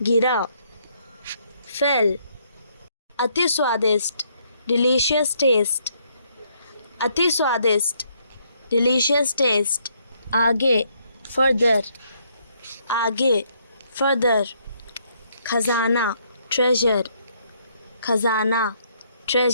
गिरा, फेल, अति स्वादिष्ट, डिलीशियस टेस्ट, अति स्वादिष्ट, डिलीशियस टेस्ट, आगे, फर्दर, आगे, फर्दर, खजाना, ट्रेजर, खजाना,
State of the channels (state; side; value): inverted; both; correlation -0.70